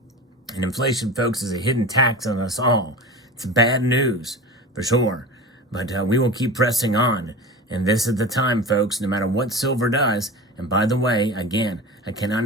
And inflation, folks, is a hidden tax on us all. It's bad news, for sure. But we will keep pressing on. And this is the time, folks, no matter what silver does. And by the way, again, I cannot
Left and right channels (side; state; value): both; normal; correlation 0.31